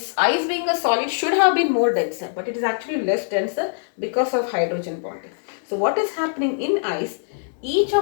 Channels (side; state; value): right; silent; digital silence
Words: ice being a solid should have been more denser, but it is actually less denser because of hydrogen bonding. So what is happening in ice? Each